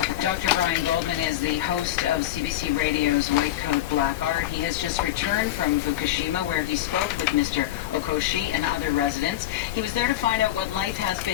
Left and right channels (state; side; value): quieter; right; 13.7 dB